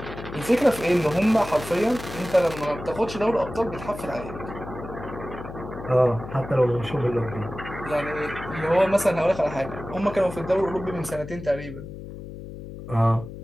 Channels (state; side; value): noise; left; hum, 11 dB below the sound